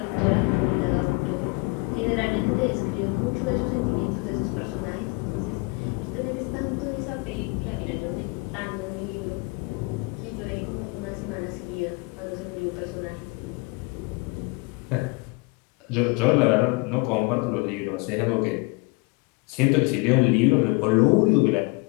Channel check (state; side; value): quieter; right; 28.1 dB